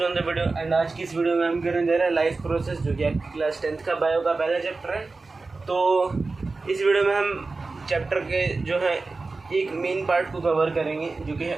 another video. And आज की इस वीडियो में हम करने जा रहे हैं लाइफ प्रोसेस, जो कि आपकी क्लास 10th का बायो का पहला चैप्टर है। तो इस वीडियो में हम चैप्टर के जो है एक मेन पार्ट को कवर करेंगे, जो कि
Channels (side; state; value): left; quieter; 3.7 dB